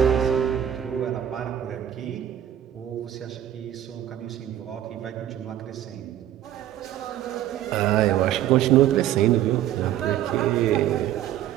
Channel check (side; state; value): left; quieter; 11.6 dB